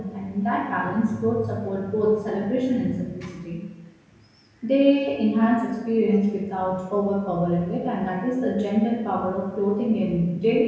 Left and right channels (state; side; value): identical; both; correlation 1.00